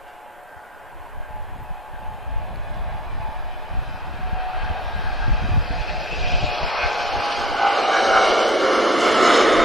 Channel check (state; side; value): normal; both; correlation 0.52